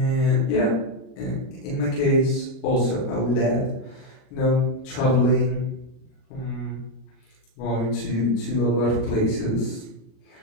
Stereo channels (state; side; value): late; right; 39 ms